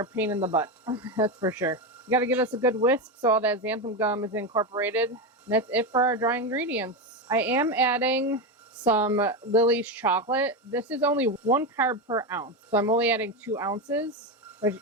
a pain in the butt. That's for sure. You got to give us a good whisk so all that xanthan gum is incorporated. And that's it for our dry ingredients. I am adding some Lily's chocolate. This is only 1 carb per ounce, so I'm only adding 2 ounces. Which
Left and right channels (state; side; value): normal; both; correlation 0.13